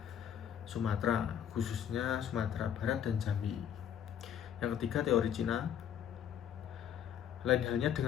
Sumatera, khususnya Sumatera Barat dan Jambi. Yang ketiga, teori Cina. Lain halnya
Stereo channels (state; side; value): quieter; right; 9.3 dB